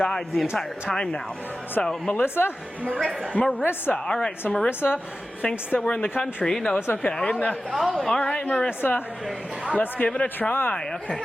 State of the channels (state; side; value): normal; both; correlation 0.94